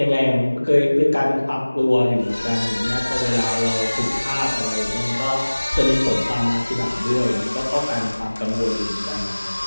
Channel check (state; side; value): inverted; both; correlation -1.00